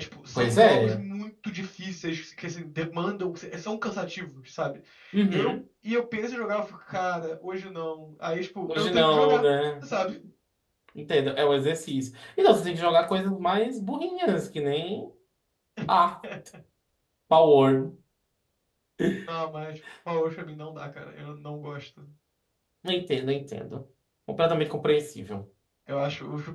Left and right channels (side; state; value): both; identical; correlation 1.00